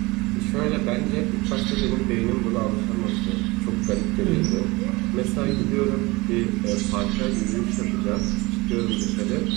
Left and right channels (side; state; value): left; quieter; 23.0 dB